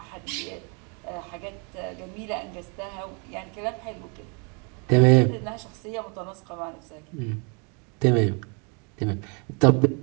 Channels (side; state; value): left; quieter; 35.0 dB